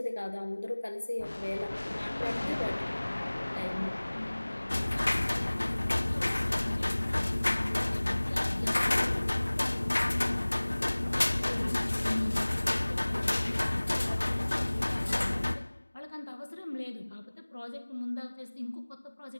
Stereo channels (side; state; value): both; inverted; correlation -1.00